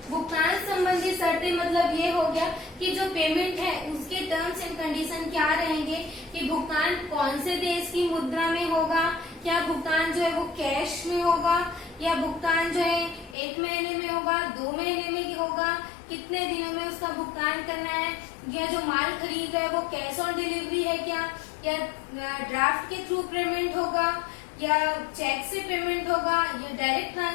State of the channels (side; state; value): right; drops out; at 13.4 s